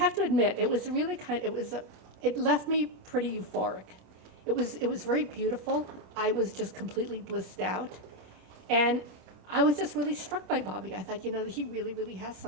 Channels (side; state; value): left; late; 27 ms